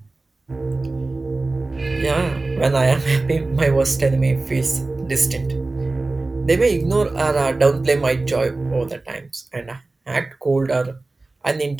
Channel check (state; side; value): quieter; left; 3.2 dB